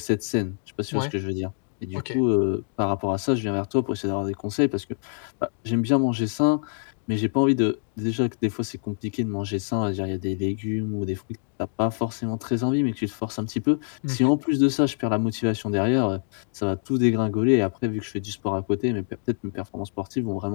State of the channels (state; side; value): silent; right; digital silence